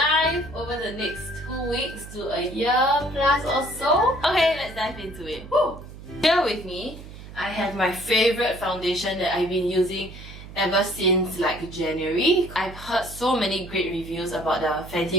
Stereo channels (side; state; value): right; noise; hum, 15 dB below the sound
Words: over the next 2 weeks to a year plus or so. Okay, let's dive into it. Woo! Here with me, I have my favorite foundation that I've been using ever since like January. I've heard so many great reviews about the